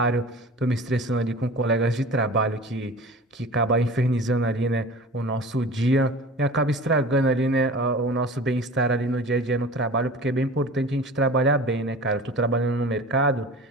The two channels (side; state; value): both; normal; correlation 0.39